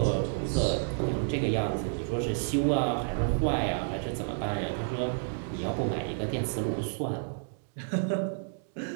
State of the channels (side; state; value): left; silent; digital silence